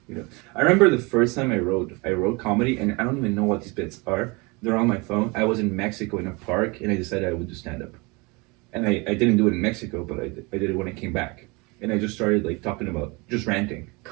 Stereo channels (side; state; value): left; quieter; 27.1 dB